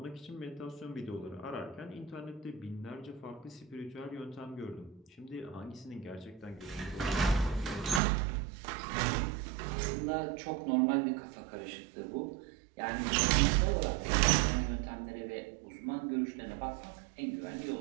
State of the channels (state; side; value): drops out; left; at 8.0 s